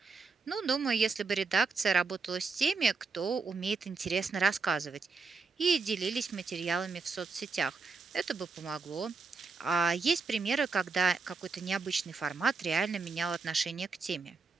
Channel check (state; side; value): quieter; left; 4.6 dB